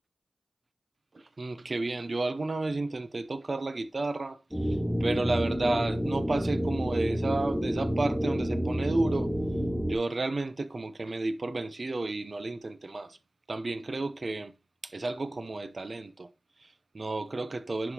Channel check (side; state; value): both; normal; correlation 0.98